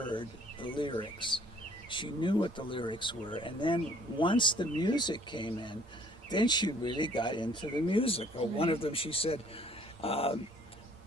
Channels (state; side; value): normal; both; correlation 0.58